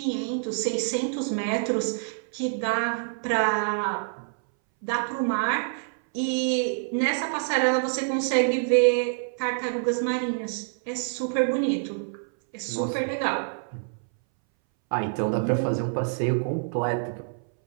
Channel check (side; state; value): left; silent; 60 dB below the other